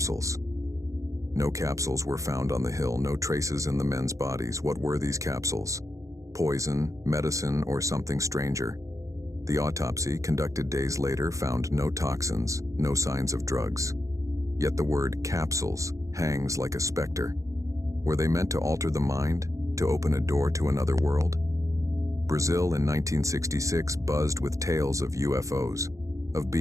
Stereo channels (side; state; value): left; late; 0.15 ms